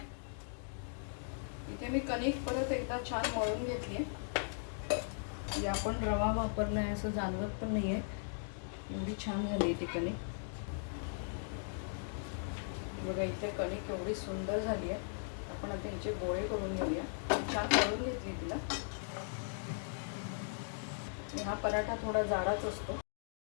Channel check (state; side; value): silent; right; digital silence